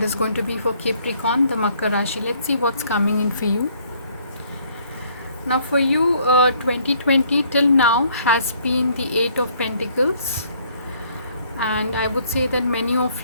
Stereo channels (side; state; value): both; inverted; correlation -0.63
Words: is going to be for Capricorn, the Makar Rashi. Let's see what's coming in for you. Now for you, 2020 till now has been the Eight of Pentacles, and I would say that many of